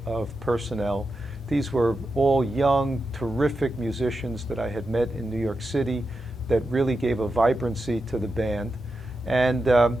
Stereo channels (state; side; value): normal; both; correlation 0.89